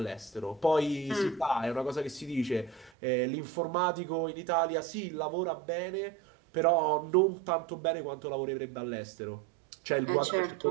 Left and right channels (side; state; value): left; drops out; at 2.9 s